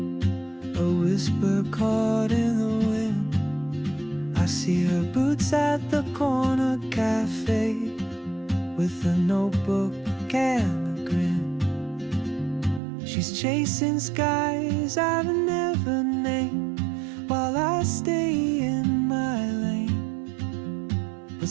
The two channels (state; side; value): drops out; left; at 12.8 s